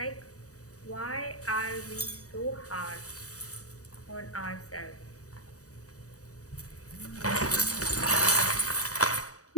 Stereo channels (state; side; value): late; right; 0.66 ms